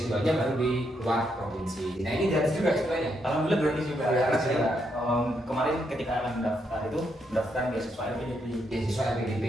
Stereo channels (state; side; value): normal; both; correlation 0.78